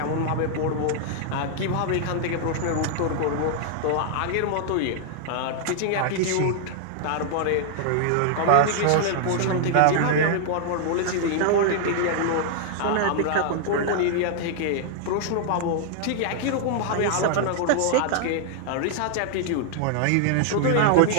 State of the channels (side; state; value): both; different; correlation -0.01